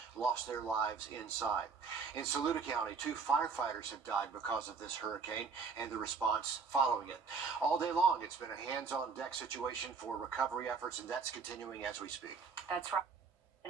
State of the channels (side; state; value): left; quieter; 5.2 dB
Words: lost their lives inside. In Saluda County, 2 firefighters have died because of this hurricane and the response following it. All day long, it's been a hands-on-deck situation for recovery efforts, and that's continuing as we speak. That's right.